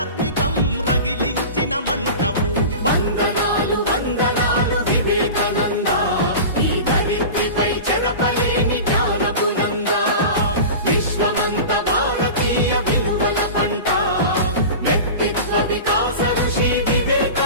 రగిలించిన మంటవు వందనాలు వందనాలు వివేకానంద ఈ ధరిత్రిపై చెరపలేని జ్ఞానపు నంద విశ్వమంత భారతీయ విలువల పంట వ్యక్తిత్వ వికాస ఋషి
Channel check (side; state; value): both; inverted; correlation -0.31